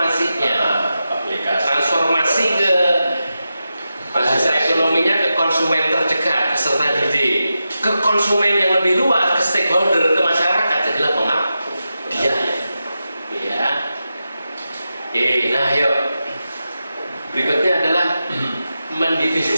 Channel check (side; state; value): both; inverted; correlation -0.90